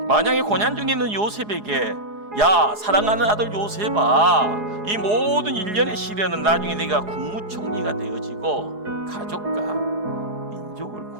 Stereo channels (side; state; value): left; late; 4.8 ms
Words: 만약에 고난 중에 있는 요셉에게 야, 사랑하는 아들 요셉아, 이 모든 일련의 시련은 나중에 내가 국무총리가 되어지고 가족과 민족을